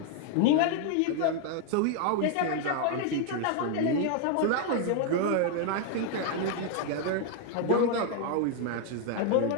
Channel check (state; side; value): different; both; correlation 0.00